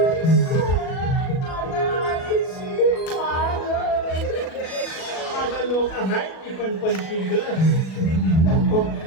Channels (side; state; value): right; late; 37 ms